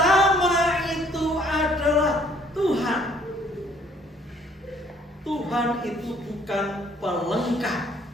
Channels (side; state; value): both; normal; correlation 0.61